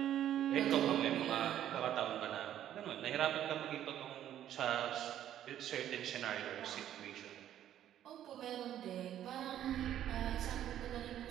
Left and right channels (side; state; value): left; quieter; 11.3 dB